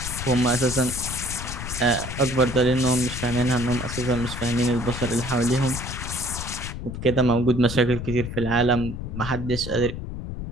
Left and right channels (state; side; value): noise; left; rumble, 7 dB below the sound